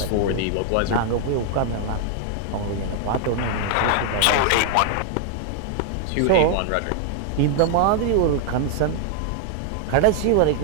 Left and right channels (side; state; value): both; different; correlation 0.00